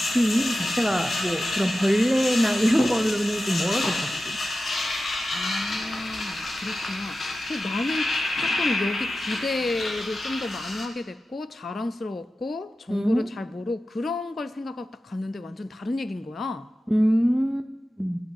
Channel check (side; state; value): both; normal; correlation 0.93